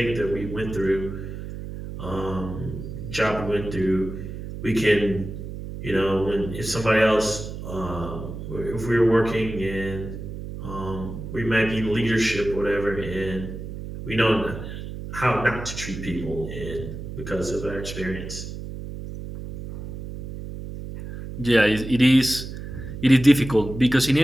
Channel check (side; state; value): right; noise; hum, 9 dB below the sound